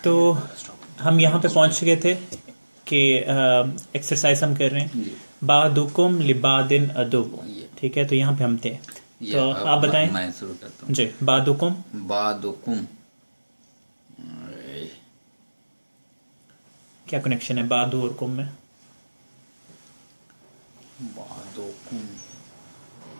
तो हम यहाँ पे पहुँच गए थे कि एक्सरसाइज हम कर रहे हैं बादुकुम लिबादिन अदुब, ठीक है। तो यहाँ पे हम थे, तो आप बताएं। मैं शुरू करता हूँ जी, बादुकुम। बादुकुम, क्या कनेक्शन है बादु और कुम में? बादुकुम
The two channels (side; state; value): both; inverted; correlation -1.00